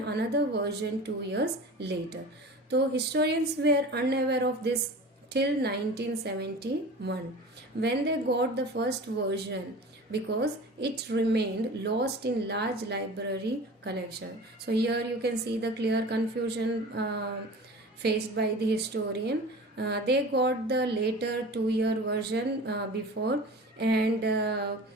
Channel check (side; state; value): both; normal; correlation 0.37